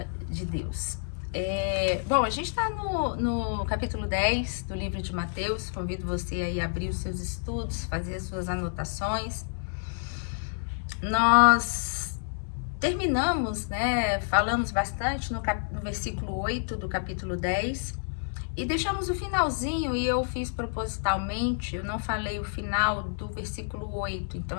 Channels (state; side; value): silent; right; digital silence